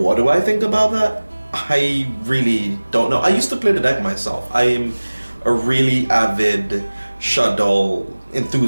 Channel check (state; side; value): inverted; both; correlation -1.00